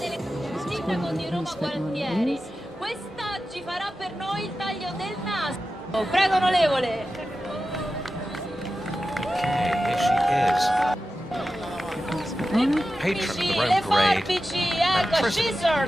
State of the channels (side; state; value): both; normal; correlation 0.93